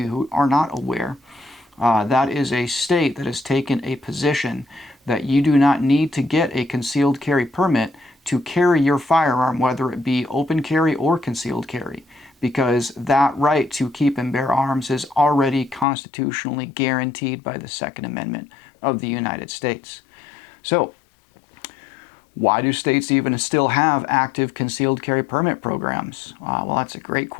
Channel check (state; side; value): drops out; right; at 15.9 s